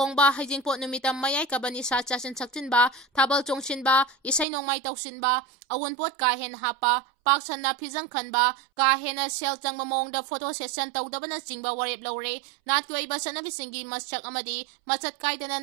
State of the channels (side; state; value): left; drops out; at 4.5 s